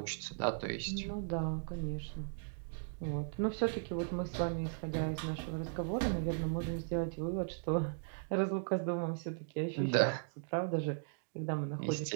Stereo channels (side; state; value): left; silent; digital silence